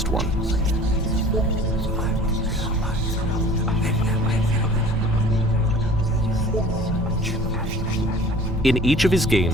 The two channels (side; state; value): both; normal; correlation 0.47